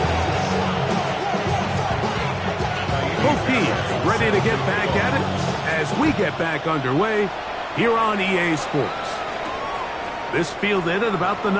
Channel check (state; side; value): identical; both; correlation 1.00